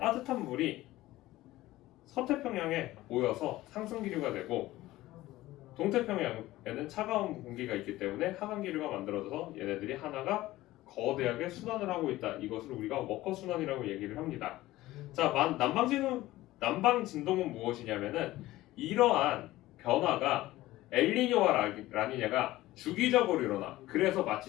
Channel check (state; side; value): quieter; right; 16.9 dB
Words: 물이 서태평양에 모여서 상승기류가 되고 동태평양에는 차가운 공기가 있기 때문에 하강기류가 만들어져서 얘네들이 하나가 거대하게 순환을 하고 있다. 이것을 우리가 워커 순환이라고 얘기를 합니다. 자, 남방 진동은 무엇이냐면은 이러한 변화가 엘니뇨와 라니냐가 주기적으로 일어나. 그래서